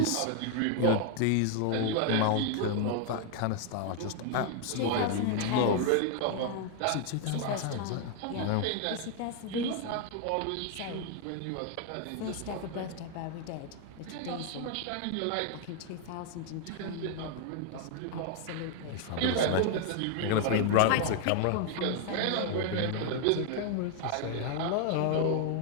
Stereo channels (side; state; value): both; different; correlation 0.00